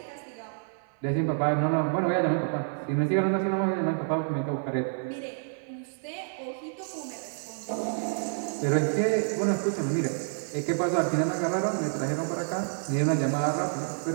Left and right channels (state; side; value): silent; left; 59 dB below the other